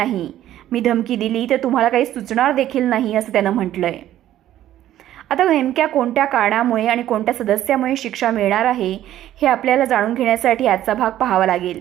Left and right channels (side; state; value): left; quieter; 12.7 dB